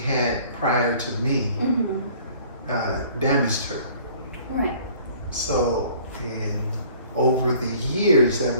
prior to me damaged her. Right. So over the years that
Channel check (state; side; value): inverted; both; correlation -0.53